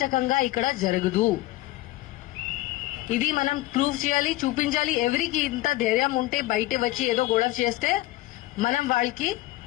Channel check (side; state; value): right; quieter; 17.6 dB